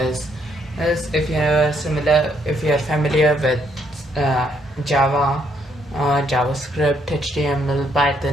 As if you are familiar with Java, JavaScript, HTML,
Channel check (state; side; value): normal; both; correlation 0.72